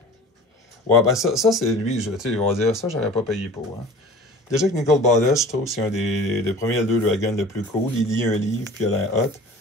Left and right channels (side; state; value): both; normal; correlation 0.41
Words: Ouais, ben ça c'est lui, tu sais, il va dire ça, j'aurais pas payé pour. Hein. Déjà que Nicole Ballas, je trouve que c'est un des premiers Elder Dragon le plus cool. Il lit un livre, puis il a l'air hot.